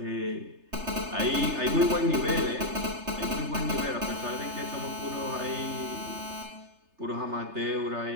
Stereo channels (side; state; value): left; late; 3.3 ms